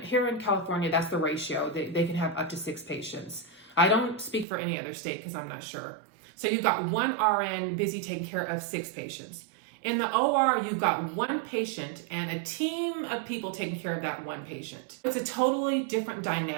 California, that's the ratio. They can have up to 6 patients. I don't speak for any other state because I'm not sure. So you've got 1 RN busy taking care of 6 patients. In the OR, you've got 1 patient and a team of people taking care of that 1 patient. It's a totally different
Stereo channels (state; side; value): drops out; left; at 4.5 s